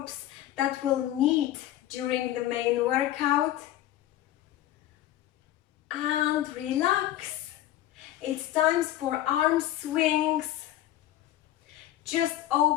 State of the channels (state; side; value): quieter; right; 13.5 dB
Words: that we'll need during the main workout. And relax. It's time for arm swings. Just